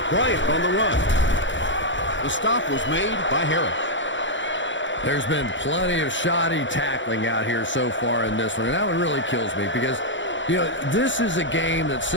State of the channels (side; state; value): right; late; 0.54 ms